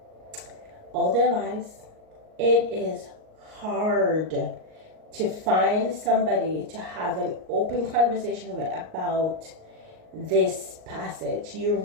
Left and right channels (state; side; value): late; left; 38 ms